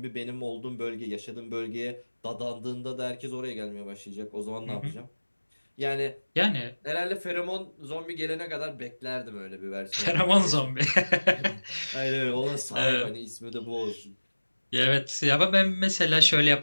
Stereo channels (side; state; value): both; inverted; correlation -1.00